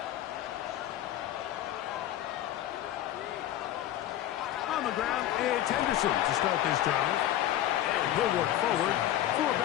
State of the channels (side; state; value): right; quieter; 12.6 dB